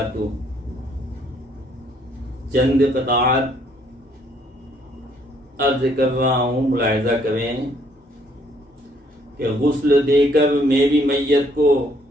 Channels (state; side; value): normal; both; correlation 0.66